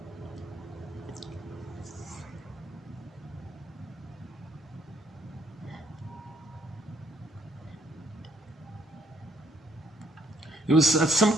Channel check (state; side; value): normal; both; correlation 0.68